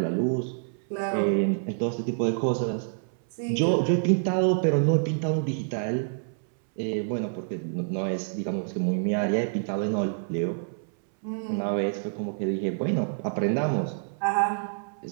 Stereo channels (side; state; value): left; silent; 60 dB below the other